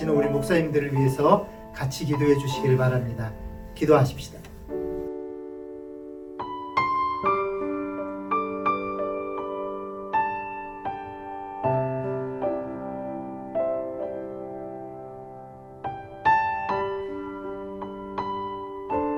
우리 목사님들을 위해서 같이 기도해 주시기를 바랍니다. 기도하십시다.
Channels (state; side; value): identical; both; correlation 1.00